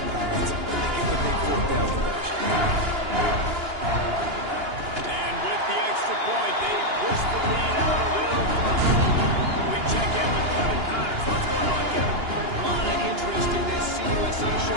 pads, and they get the big 4th down conversion. And with the extra point, they push the lead out a little further. We check in with Kevin Connors. What's going on, Kevin? A lot of interest in this CUSA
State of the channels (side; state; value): left; late; 2.9 ms